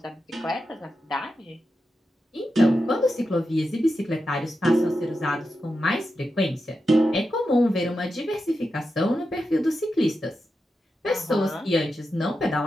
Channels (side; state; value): both; normal; correlation 0.89